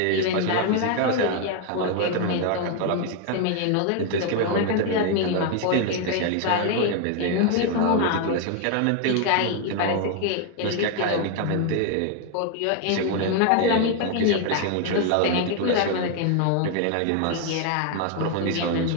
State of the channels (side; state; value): both; different; correlation 0.00